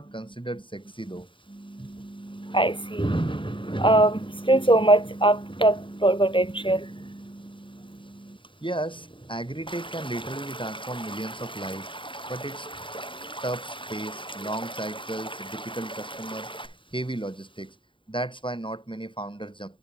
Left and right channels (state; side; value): late; right; 0.25 ms